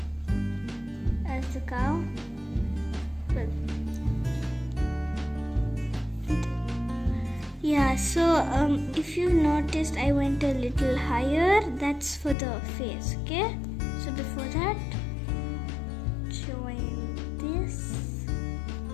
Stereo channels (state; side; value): drops out; right; at 12.4 s